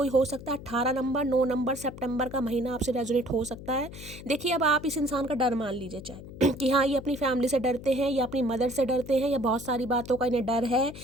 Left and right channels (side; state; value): left; noise; hum, 14 dB below the sound